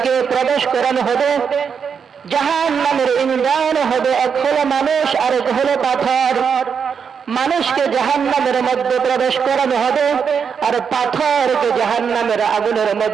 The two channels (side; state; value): left; quieter; 6.6 dB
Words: প্রবেশ করানো হবে, জাহান্নামের ইন্ধন হবে এক হলো মানুষ আর এক হলো পাথর। মানুষকে জাহান্নামের মধ্যে প্রবেশ করানো হবে আর পাথরকে জাহান্নামের আগুনের